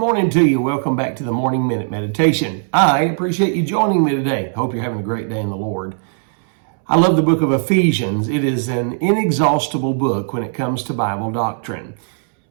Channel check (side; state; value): left; silent; 67 dB below the other